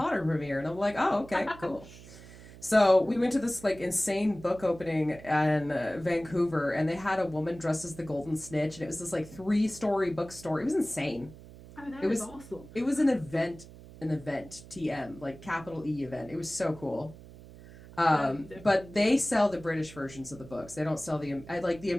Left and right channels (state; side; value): noise; right; hum, 18 dB below the sound